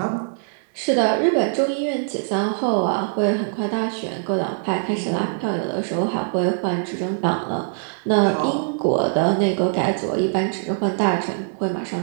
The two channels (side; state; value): left; silent; digital silence